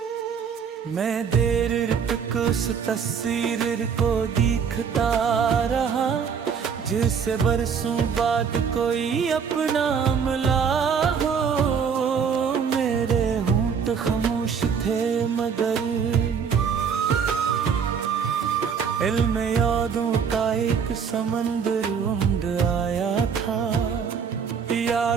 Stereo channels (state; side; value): quieter; left; 6.7 dB